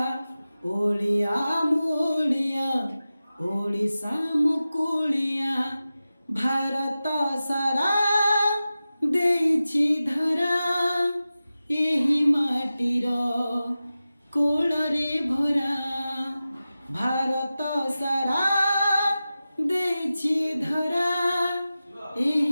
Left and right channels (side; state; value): both; inverted; correlation -0.94